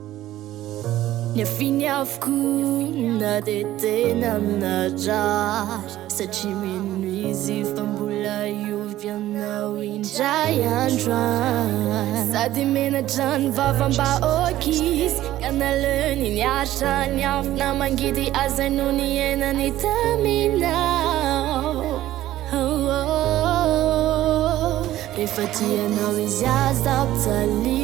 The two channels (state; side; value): quieter; left; 14.2 dB